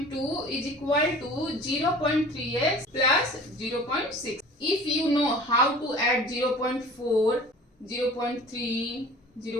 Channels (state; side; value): normal; both; correlation 0.44